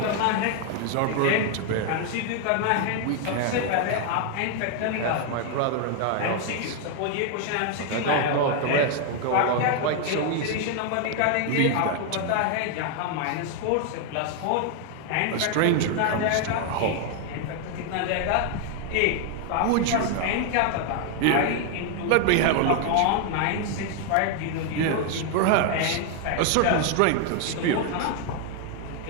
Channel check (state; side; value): different; both; correlation 0.00